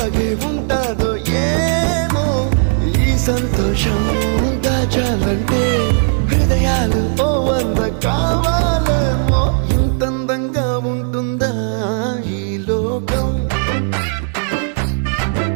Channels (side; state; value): left; silent; digital silence